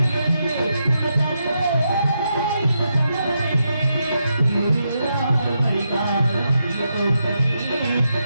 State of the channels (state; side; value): inverted; both; correlation -0.83